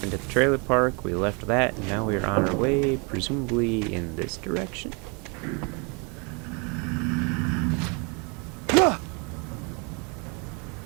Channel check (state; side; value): quieter; left; 32.6 dB